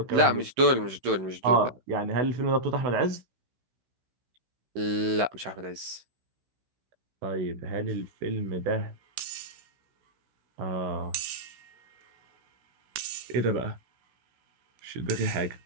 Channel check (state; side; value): late; left; 16 ms